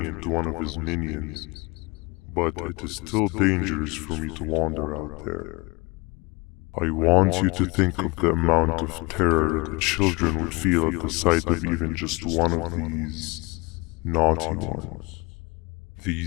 into one of his minions, but it is still dangerous for me to wander out there. I want you to think of the amount of terror that the children would feel at the sight of even just one of these naughty ones.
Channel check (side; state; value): right; quieter; 26.0 dB